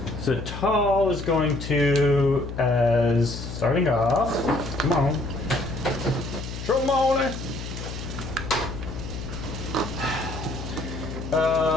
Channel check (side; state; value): left; noise; hum, 8 dB below the sound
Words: So tall is going to, as starting off, come on. Tromone.